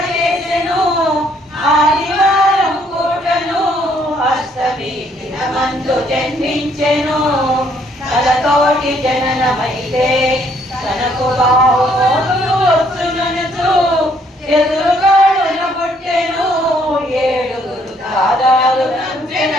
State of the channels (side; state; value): both; normal; correlation 0.67